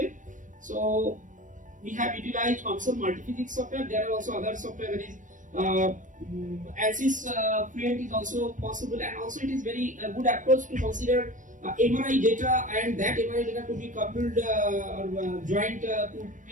So we have utilized console multiphysics software. There are also other software, that is ANSYS Fluent is also possible, and also it is very good approach to consider MRI data, and that MRI data could be coupled or joined to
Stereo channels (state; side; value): late; left; 0.37 ms